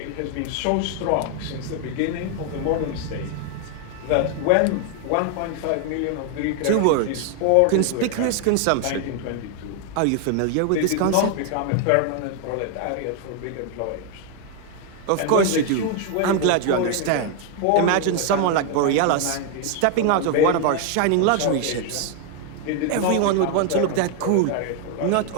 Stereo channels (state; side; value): different; both; correlation 0.00